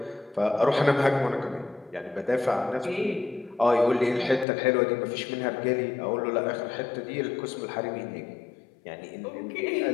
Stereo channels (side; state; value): right; drops out; at 4.5 s